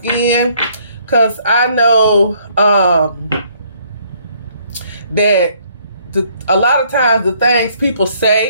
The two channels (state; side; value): inverted; both; correlation -0.65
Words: because I know that a lot of times the things people